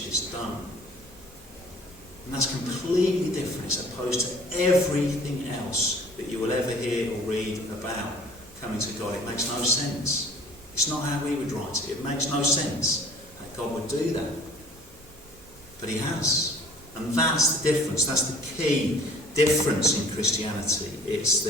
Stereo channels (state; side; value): normal; both; correlation 0.50